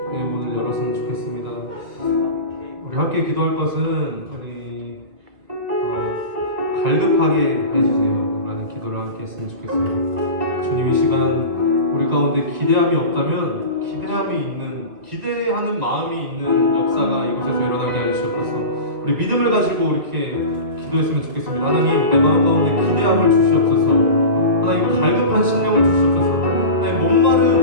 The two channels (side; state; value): left; late; 1.9 ms